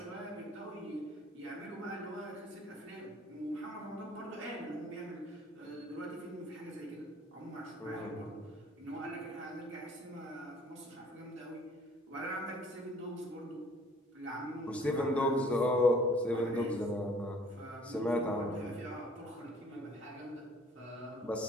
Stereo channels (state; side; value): normal; both; correlation 0.55